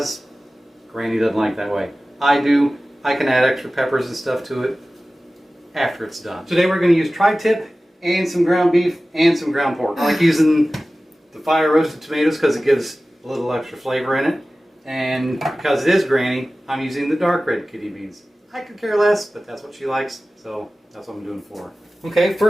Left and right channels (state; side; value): normal; both; correlation 0.96